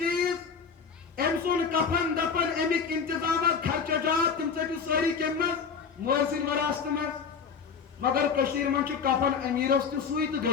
أمۍ سُنٛد کفن دفن امیک انتظامات خرچات تم ژٔٹِو سٲری کمہِ منٛز مٲلۍ سٕنٛدِ وراثتہٕ منٛز مگر کشیٖرِ منٛز چھُ کفن امیٖرس تہِ سُے تہٕ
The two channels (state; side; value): quieter; right; 6.0 dB